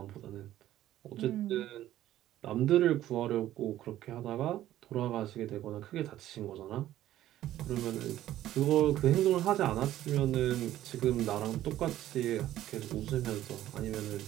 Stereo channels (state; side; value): quieter; left; 13.4 dB